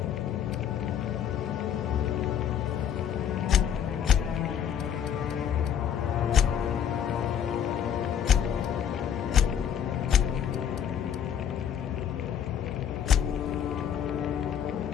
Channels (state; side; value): quieter; right; 8.8 dB